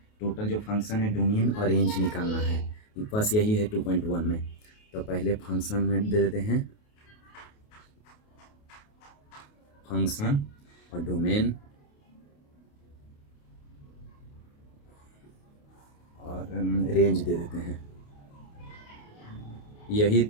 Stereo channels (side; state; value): right; late; 28 ms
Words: टोटल जो फंक्शन है डोमेन और रेंज निकालना है, बस यही है 2.1 में। तो पहले फंक्शन में दे देते हैं फंक्शन और डोमेन और रेंज दे देते हैं।